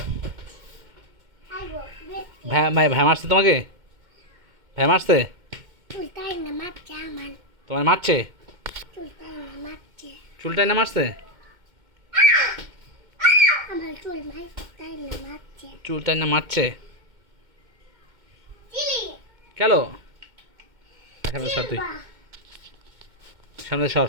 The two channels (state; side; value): late; left; 2.1 ms